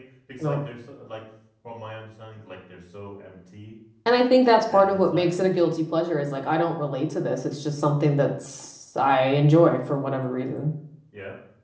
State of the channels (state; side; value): identical; both; correlation 1.00